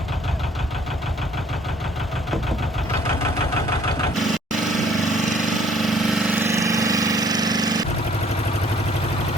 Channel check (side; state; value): both; normal; correlation 0.59